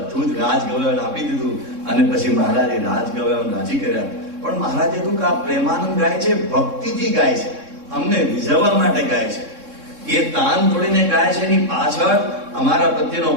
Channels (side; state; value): left; late; 3.6 ms